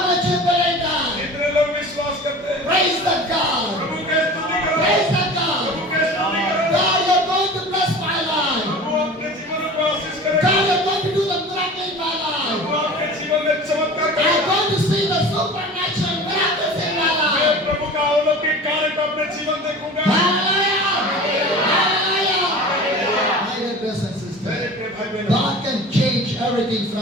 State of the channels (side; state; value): both; normal; correlation 0.38